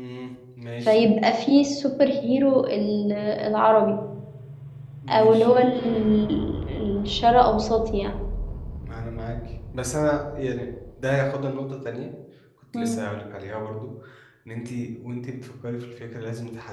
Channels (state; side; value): identical; both; correlation 1.00